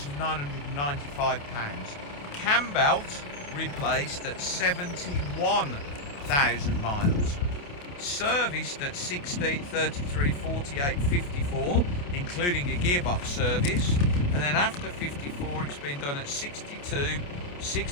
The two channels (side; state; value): right; late; 28 ms